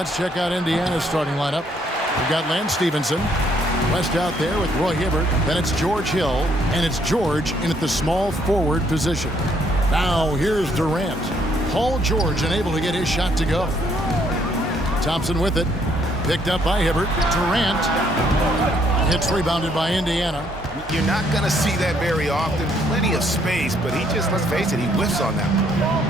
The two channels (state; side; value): normal; both; correlation 0.68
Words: check out Indiana's starting lineup. We've got Lance Stevenson. West out there with Roy Hibbert. Then it's George Hill. And it's George in at the small forward position. Now here's Durant. Paul George unable to get his shot to go. Thompson with it. Picked up by Hibbert. Durant. Hits rebounded by Indiana. You're not going to see that very often. Plenty of space, but he just, let's face it, he whiffs on that